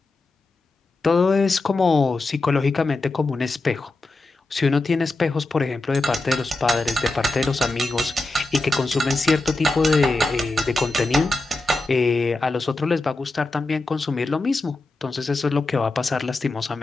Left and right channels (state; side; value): quieter; right; 3.0 dB